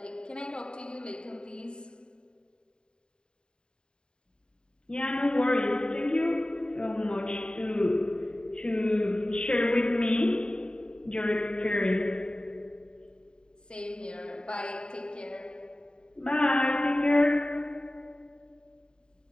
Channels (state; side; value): late; right; 0.049 ms